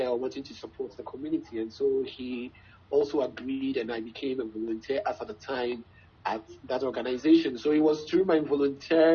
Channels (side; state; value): both; identical; correlation 1.00